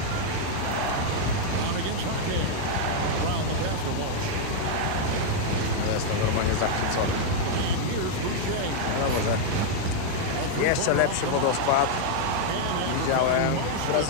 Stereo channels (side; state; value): both; different; correlation 0.00